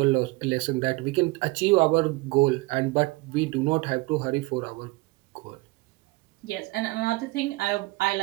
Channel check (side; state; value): left; quieter; 22.7 dB